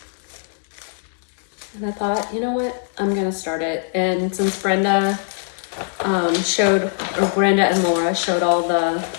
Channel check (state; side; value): silent; right; digital silence